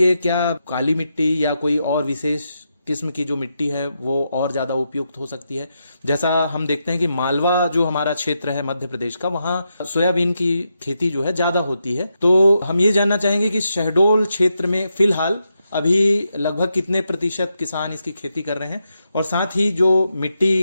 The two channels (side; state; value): both; inverted; correlation -0.84